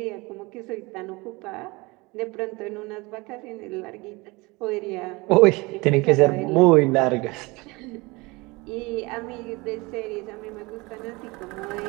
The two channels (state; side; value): quieter; left; 24.4 dB